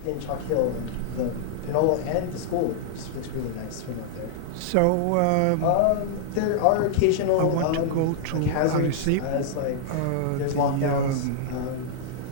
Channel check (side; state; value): both; different; correlation -0.01